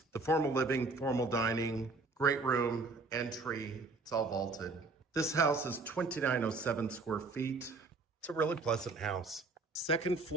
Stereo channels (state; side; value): quieter; left; 3.7 dB